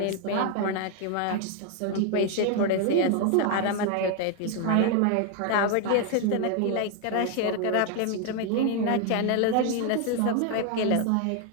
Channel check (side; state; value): both; different; correlation 0.01